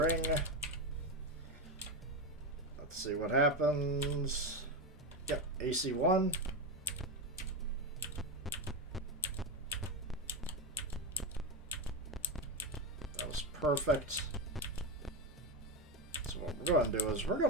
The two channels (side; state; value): both; normal; correlation 0.14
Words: Let's see what happens. Yep, AC 1. That was perfect. So what we're going to do is we're